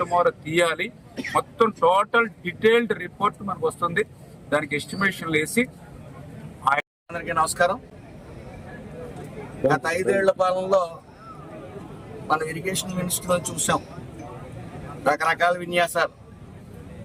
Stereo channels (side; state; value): both; identical; correlation 1.00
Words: మేర తీయాలి, మొత్తం టోటల్ డీటెయిల్డ్ రిపోర్ట్ మనకు వస్తుంది. దానికి ఎస్టిమేషన్లు వేసి. అందరికీ నమస్కారం. గత 5 ఏళ్ల పాలనలో మనం ఇరిగేషన్ మినిస్టర్లో చూసాం రకరకాల విన్యాసాలు.